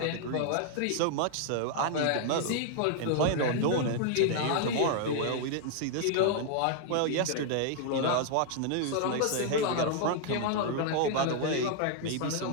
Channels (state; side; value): different; both; correlation 0.00